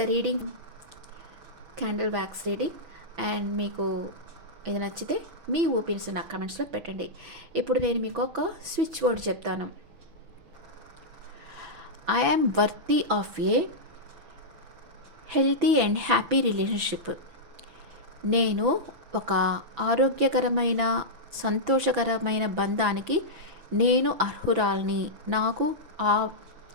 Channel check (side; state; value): left; late; 6.0 ms